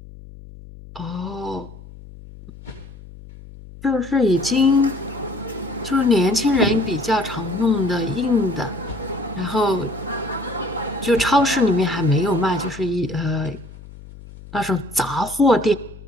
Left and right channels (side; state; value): left; noise; hum, 17 dB below the sound